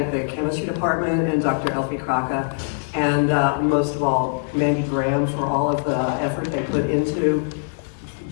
the chemistry department and Dr. Elfe Kraka, and most of all, Mandy Graham for all of the effort they put into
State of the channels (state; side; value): silent; right; digital silence